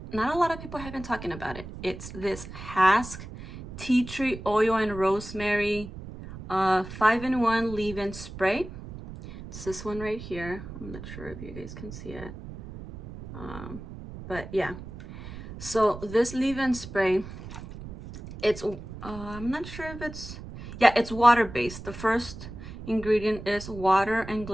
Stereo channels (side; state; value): right; noise; rumble, 12 dB below the sound